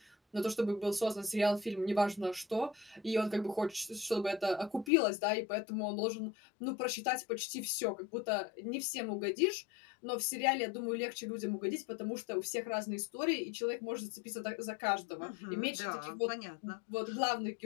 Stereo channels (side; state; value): right; drops out; at 4.9 s